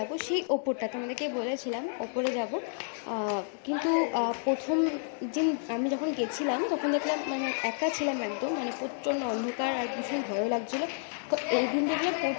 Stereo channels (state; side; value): silent; right; 58 dB below the other